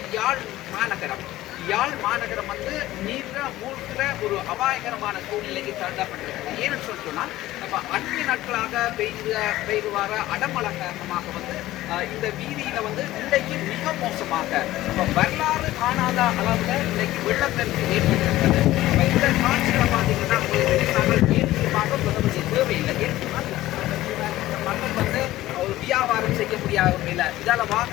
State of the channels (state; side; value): quieter; right; 15.8 dB